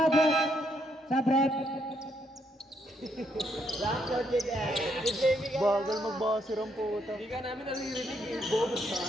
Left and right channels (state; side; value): normal; both; correlation 0.74